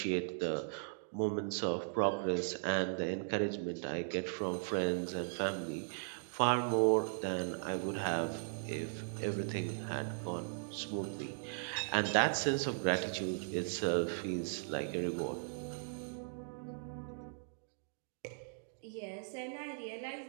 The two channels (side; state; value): left; silent; digital silence